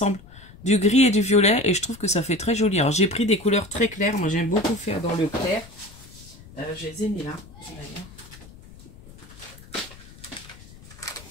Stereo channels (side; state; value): left; noise; rumble, 20 dB below the sound